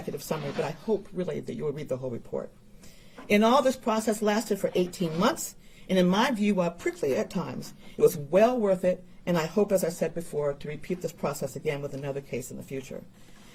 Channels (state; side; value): identical; both; correlation 1.00